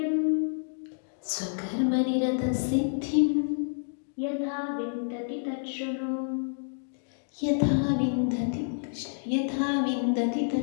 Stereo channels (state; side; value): silent; right; digital silence